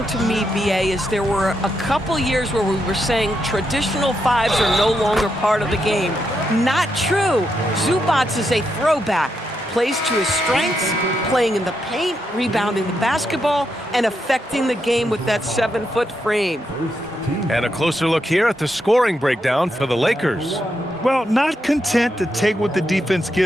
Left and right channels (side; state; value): both; normal; correlation 0.82